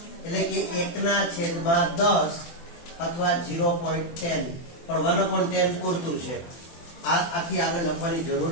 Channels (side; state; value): right; late; 24 ms